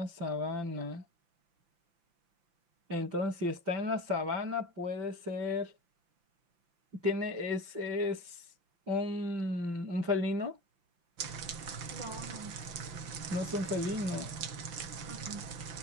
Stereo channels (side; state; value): left; late; 5.9 ms